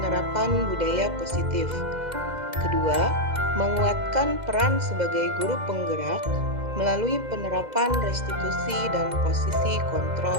budaya positif. Kedua, menguatkan peran sebagai guru penggerak melalui penerapan restitusi dan posisi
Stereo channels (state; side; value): late; left; 2.0 ms